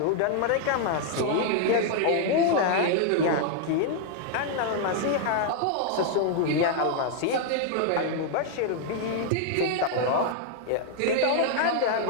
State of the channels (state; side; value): different; both; correlation 0.00